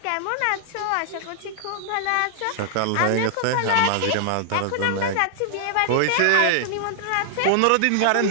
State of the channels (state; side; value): different; both; correlation -0.01